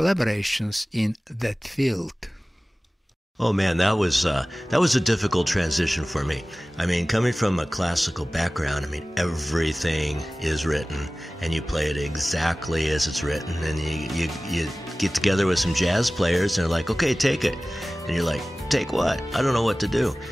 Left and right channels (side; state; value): both; normal; correlation 0.97